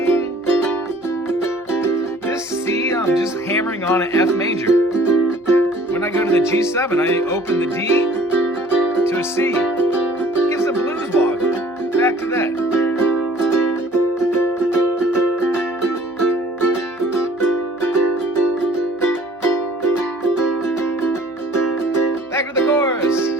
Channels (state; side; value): normal; both; correlation 0.53